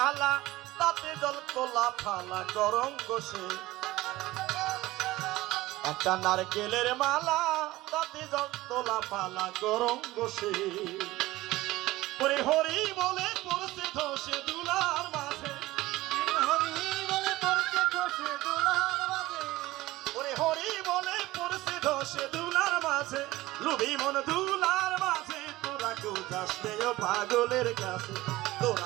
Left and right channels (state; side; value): quieter; left; 18.1 dB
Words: তাতে জল তোলা ফালা গরম বসে, একটা নারকেলের মালা তাতে জল তোলা ফালা গরম বসে, ওরে হরি বলে পড়ছে ধসে দুলার মাঝে, হরি বলে পড়ছে ধসে দুলার মাঝে, ওরে হরি বলে পড়ছে ধসে দুলার মাঝে, লুবি মন দুলার মাঝে, তোরা কেউ যাস নে ও পাগলের কাছে,